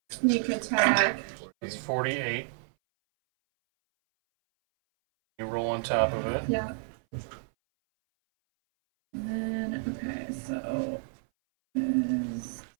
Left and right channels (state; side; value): silent; left; 58 dB below the other